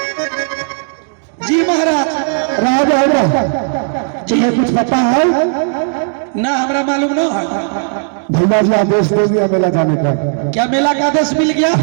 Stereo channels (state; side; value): silent; left; digital silence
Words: जी महाराज। राजा तुम्हें कुछ पता है? ना हमरा मालूम न है। भैया जी आदेश दे दिया मेला जाने का। क्या मेला का आदेश मिल गया?